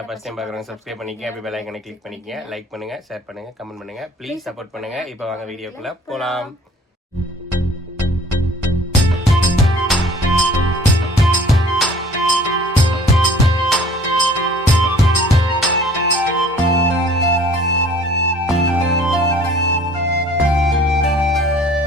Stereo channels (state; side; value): normal; both; correlation 0.51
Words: ஃபர்ஸ்ட் டைம் பார்க்குறவங்க சப்ஸ்கிரைப் பண்ணிக்கங்க, அப்படி பெல் ஐகானை கிளிக் பண்ணிக்கங்க, லைக் பண்ணுங்க, ஷேர் பண்ணுங்க, கமெண்ட் பண்ணுங்க, ப்ளீஸ் சப்போர்ட் பண்ணுங்க. இப்போ வாங்க வீடியோக்குள்ள போலாம்.